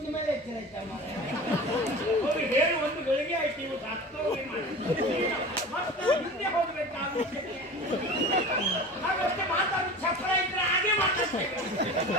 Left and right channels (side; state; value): both; normal; correlation 0.35